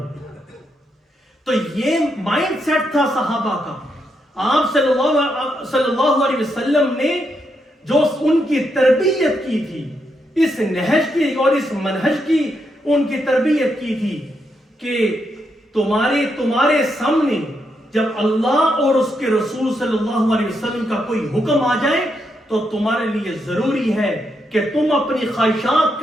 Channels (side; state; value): both; normal; correlation 0.80